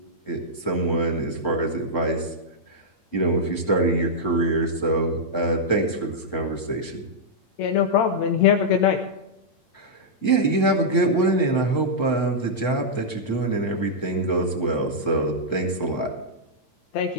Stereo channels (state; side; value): late; right; 8.8 ms